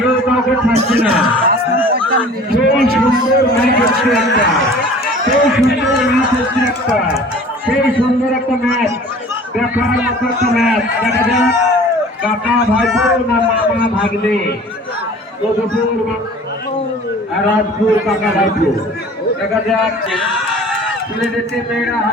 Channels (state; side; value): normal; both; correlation 0.46